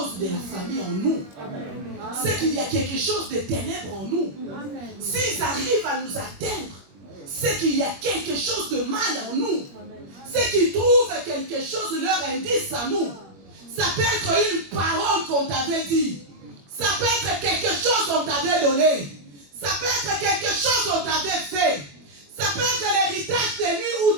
de la famille en nous. C'est qu'il y a quelque chose de ténèbres en nous. S'ils arrivent à nous atteindre, c'est qu'il y a quelque chose de mal en nous. C'est qu'ils trouvent quelque chose, leur indice à nous. Ça peut être une parole qu'on t'avait dit. Ça peut être quelque chose qu'on t'avait donné. Ça peut être quelque chose qu'on t'avait fait. Ça peut être l'héritage des nuits ou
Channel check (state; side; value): late; left; 21 ms